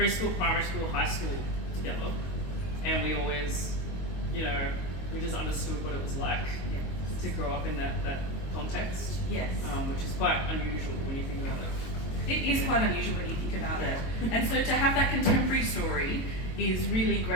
primary school, high school together. And we always, you know, we just understood what it was like to grow up in that context. Yes. Which is quite unusual when you think about it. It is quite unusual when you think about it. And so to have that contemporary story is really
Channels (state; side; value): late; right; 22 ms